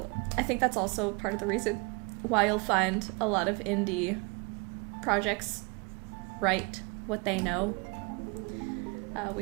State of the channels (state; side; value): quieter; left; 30.2 dB